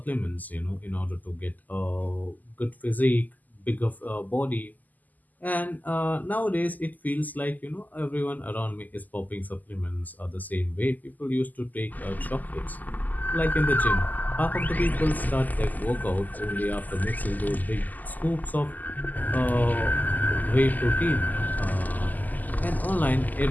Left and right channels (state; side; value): late; right; 0.082 ms